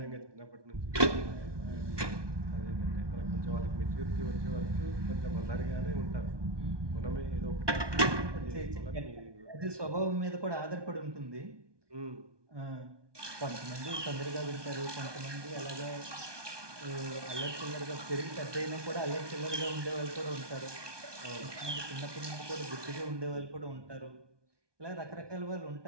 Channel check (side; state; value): left; late; 1.2 ms